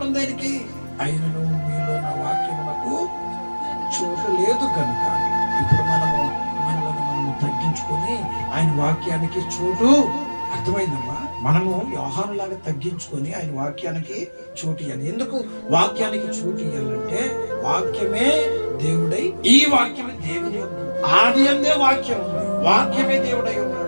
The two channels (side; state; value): both; inverted; correlation -1.00